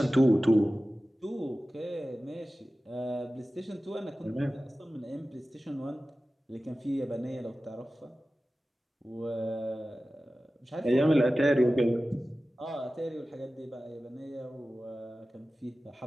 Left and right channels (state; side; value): normal; both; correlation 0.96